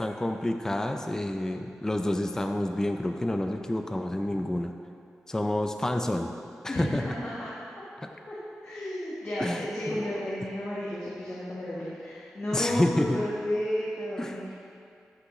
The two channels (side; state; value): both; normal; correlation 0.95